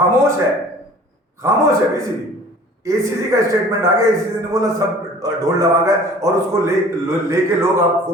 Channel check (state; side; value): normal; both; correlation 0.48